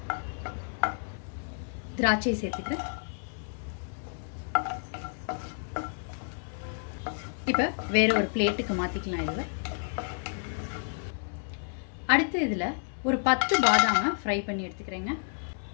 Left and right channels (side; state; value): right; silent; 58 dB below the other